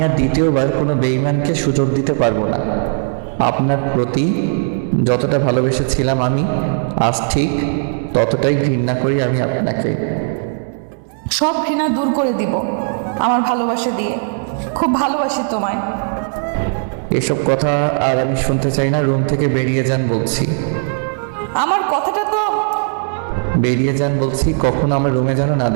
আর দ্বিতীয়বার কোনো বেঈমানকে সুযোগ দিতে পারবো না। আপনার প্রতি যতটা ভালোবেসেছিলাম আমি, আজ ঠিক ততটাই ঘৃণা করি আমি আপনাকে। সব ঘৃণা দূর করে দিব আমার ভালোবাসা দিয়ে। খুব ভালোবাসি তোমায়। এসব কথা আর আমি শুনতে চাই না। রুম থেকে বেরিয়ে যান বলছি। আমার কথাটা তো বেরিয়ে যান বলছি, কখনো আমার রুমে যেন না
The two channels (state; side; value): silent; left; digital silence